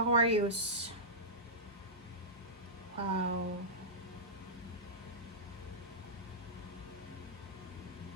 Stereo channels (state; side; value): normal; both; correlation -0.15